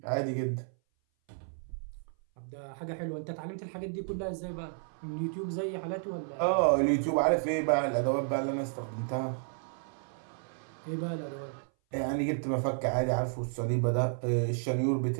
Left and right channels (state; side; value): silent; left; 56 dB below the other